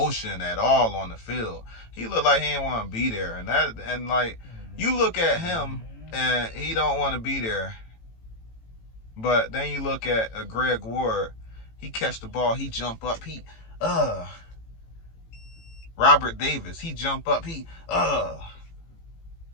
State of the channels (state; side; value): late; right; 18 ms